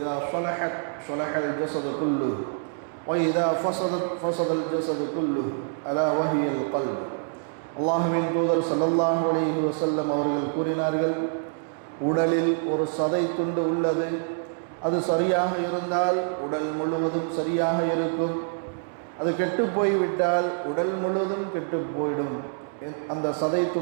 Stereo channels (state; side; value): silent; left; 61 dB below the other